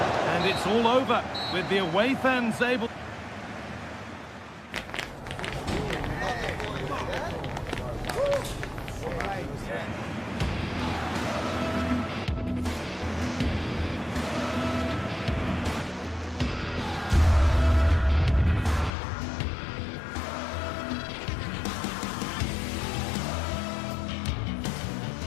And it's all over with the away fans able...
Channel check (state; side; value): drops out; right; at 18.9 s